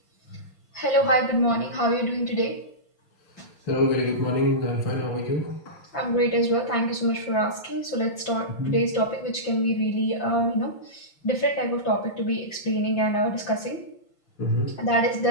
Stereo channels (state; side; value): late; right; 5.8 ms